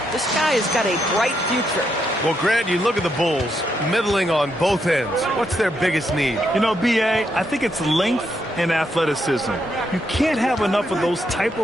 This guy has got a bright future. Well, Grant, you look at the Bulls, middling on both ends. What's their biggest need? You know, B.A., I think it's length and athleticism. You can't have enough of those type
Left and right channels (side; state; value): both; normal; correlation 0.79